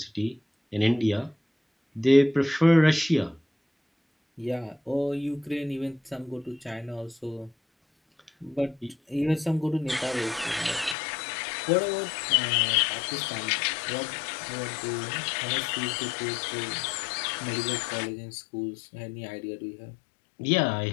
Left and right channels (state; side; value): drops out; right; at 11.0 s